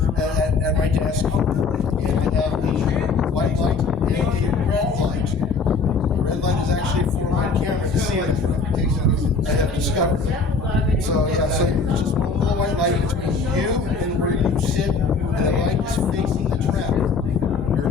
at my desk, and I have a white light and a red light. The red light is actually for my camera to see it. I have discovered. So yeah, so it's just one little white light between you and where you sit, and the light is facing the trap. Your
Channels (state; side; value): quieter; right; 4.5 dB